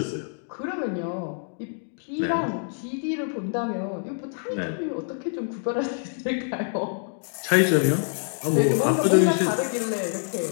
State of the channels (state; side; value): silent; right; digital silence